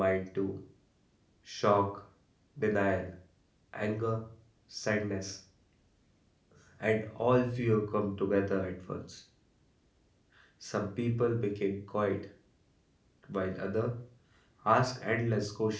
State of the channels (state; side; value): identical; both; correlation 1.00